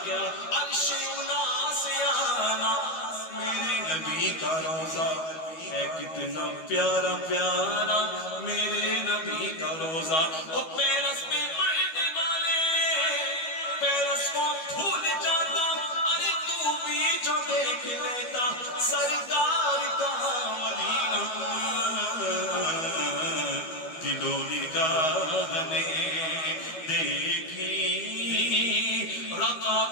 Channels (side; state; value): right; late; 12 ms